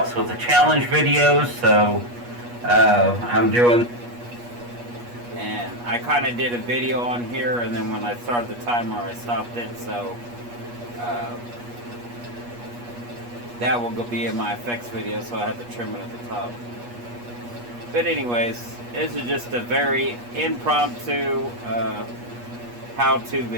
with the challenge videos, so I'm doing, and I kind of did a video on here, and then when I started the timer I stopped it, so that will be in my effects video, so I had to trim it at the top. But anyways, this is just a very impromptu how-to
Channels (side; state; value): left; late; 8.3 ms